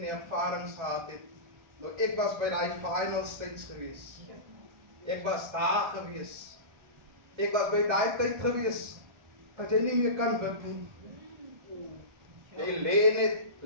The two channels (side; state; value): left; late; 1.3 ms